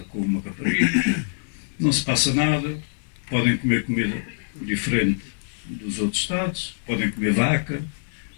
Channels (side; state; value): right; silent; digital silence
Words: com uma rapariga, não se passa nada, podem comer comida diferente dos outros estados, podem comer vaca,